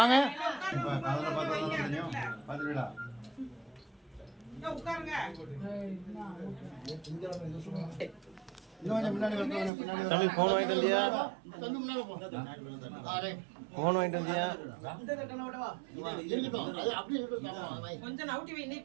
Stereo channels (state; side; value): drops out; left; at 9.7 s